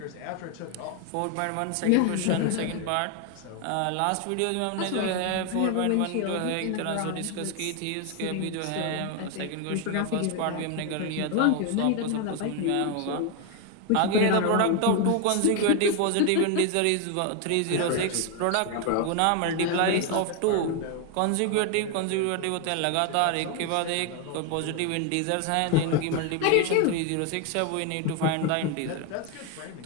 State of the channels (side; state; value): both; different; correlation 0.01